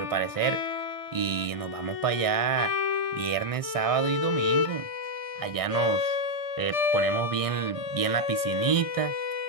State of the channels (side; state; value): right; late; 1.6 ms